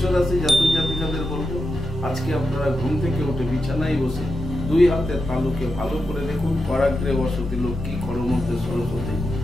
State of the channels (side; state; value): both; normal; correlation 0.88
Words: রাশি জাতক জাতিকাদের বলবো, আজকে আপনারা ঘুম থেকে উঠে বিছানায় বসে দুই হাতের তালুকে ভালো করে দেখুন। করাগ্রে বসতি লক্ষ্মী, করমধ্যে সরস্বতী,